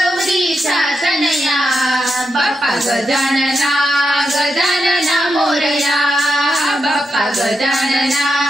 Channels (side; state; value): both; normal; correlation 0.85